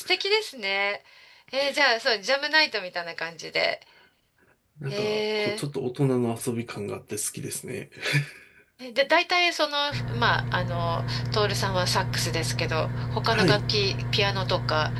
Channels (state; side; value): identical; both; correlation 1.00